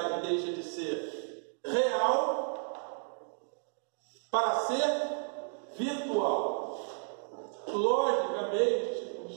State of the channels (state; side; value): silent; left; 56 dB below the other